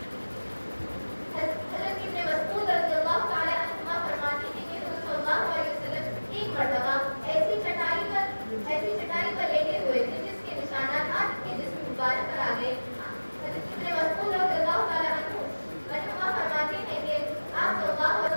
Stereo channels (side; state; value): both; inverted; correlation -1.00